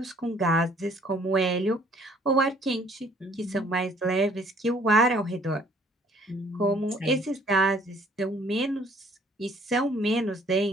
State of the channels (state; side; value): normal; both; correlation 0.59